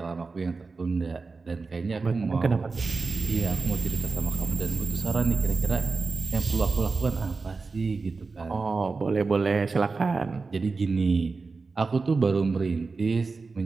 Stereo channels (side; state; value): left; quieter; 4.2 dB